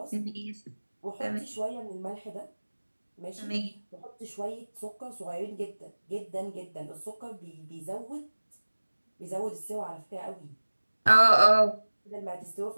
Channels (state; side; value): inverted; both; correlation -1.00